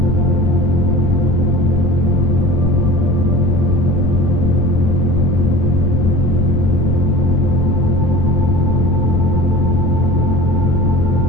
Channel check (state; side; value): noise; left; rumble, 1 dB below the sound